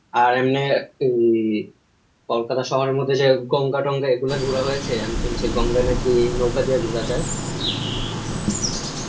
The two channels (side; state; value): both; identical; correlation 1.00